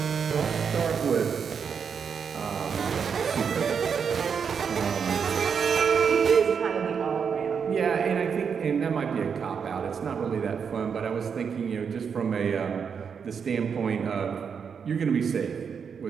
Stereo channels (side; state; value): left; quieter; 6.6 dB